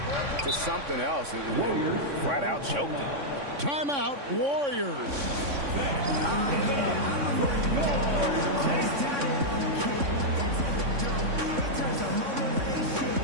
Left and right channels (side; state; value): left; late; 3.6 ms